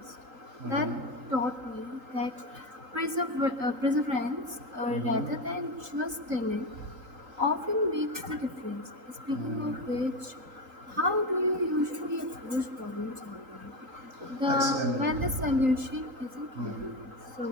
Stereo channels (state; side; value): late; left; 3.8 ms